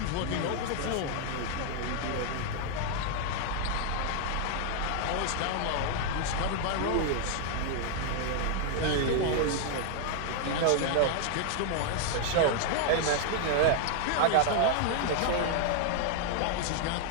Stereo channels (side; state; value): both; different; correlation 0.00